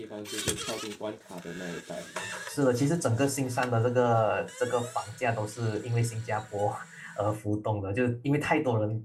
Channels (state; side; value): identical; both; correlation 1.00